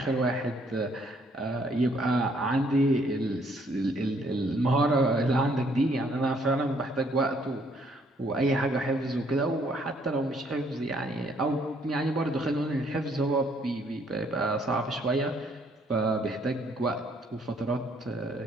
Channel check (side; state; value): both; normal; correlation 0.67